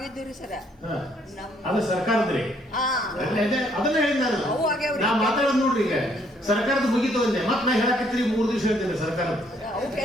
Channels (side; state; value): both; normal; correlation 0.67